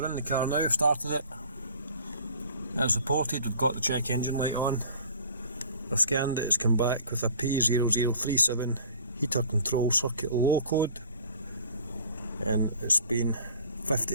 in the car now, started it. As reported, we've got the check engine light on. I've scanned it, it's come back with a P0037 heater control circuit low code, and it's been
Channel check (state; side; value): inverted; both; correlation -0.49